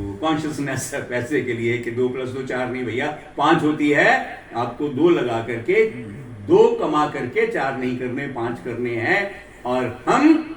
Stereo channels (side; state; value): both; identical; correlation 1.00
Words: कॉन्शियसनेस है पैसे के लिए कि 2 + 2 4 नहीं भैया 5 होती है। आपको 2 लगा करके, 2 कमा करके 4 नहीं करने, 5 करने हैं। और हम